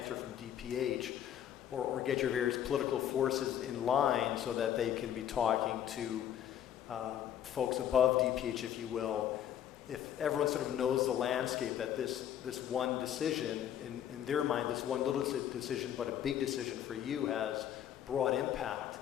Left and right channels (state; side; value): quieter; right; 10.4 dB